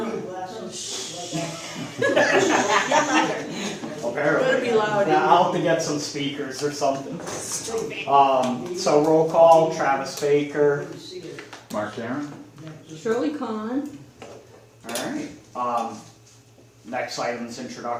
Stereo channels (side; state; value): both; identical; correlation 1.00